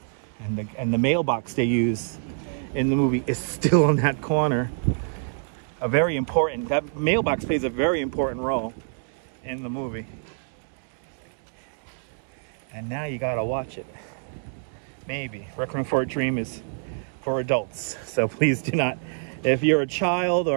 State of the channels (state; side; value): silent; left; digital silence